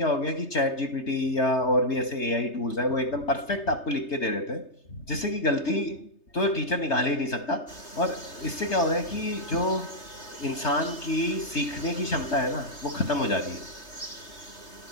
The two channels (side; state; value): right; late; 3.3 ms